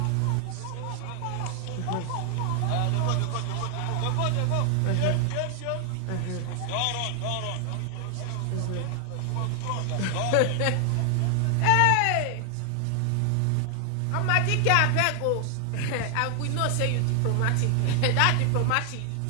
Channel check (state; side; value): different; both; correlation 0.00